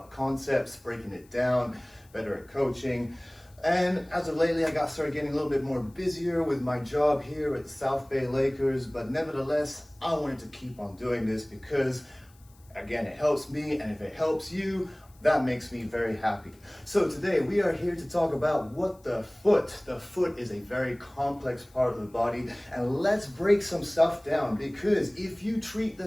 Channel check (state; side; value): noise; left; hiss, 30 dB below the sound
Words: concepts, breaking it down, better at coaching. And as of lately, I started getting a little bit more busier with my job here at the South Bay Lakers. But nevertheless, I wanted to keep on doing this because again, it helps me, and if it helps you, that makes me very happy. So today we are here to talk about the foot is a very complex part of the body, and let's break some stuff down, because if you treat the